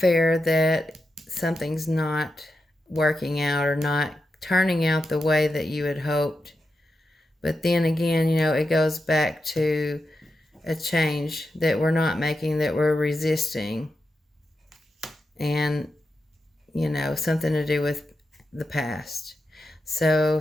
that something's not working out or not turning out the way that you had hoped. But then again, it goes back to a change that we're not making, that we're resisting. And, something to do with the past. So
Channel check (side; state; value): both; normal; correlation 0.88